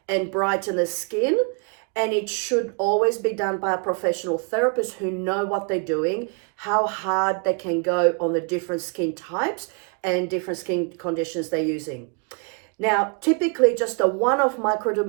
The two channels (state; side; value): quieter; left; 37.5 dB